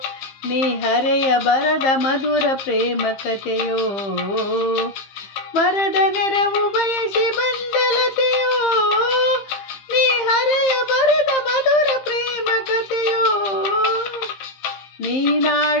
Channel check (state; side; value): late; right; 15 ms